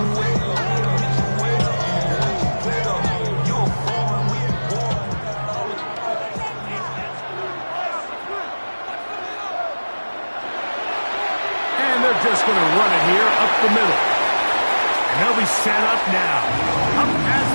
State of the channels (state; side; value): inverted; both; correlation -1.00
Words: Just going to run it here up the middle. And they'll be set up now. Up past